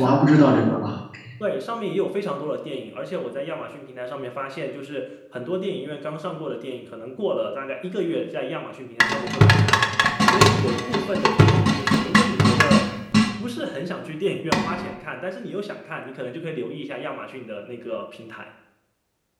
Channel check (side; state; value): both; identical; correlation 1.00